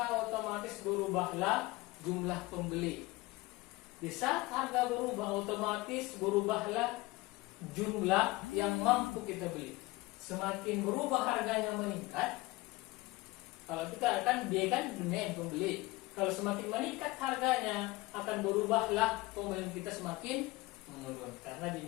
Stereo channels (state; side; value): quieter; right; 20.9 dB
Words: otomatis berubahlah jumlah pembeli. Di saat harga berubah, otomatis berubahlah jumlah yang mampu kita beli. Semakin berubah harganya meningkat, kalau kita akan dia kan demand pembeli. Kalau semakin meningkat harganya, akan berubahlah pembelian kita semakin menurun. Karena